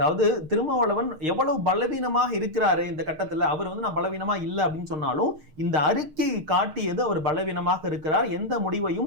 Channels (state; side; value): late; left; 6.5 ms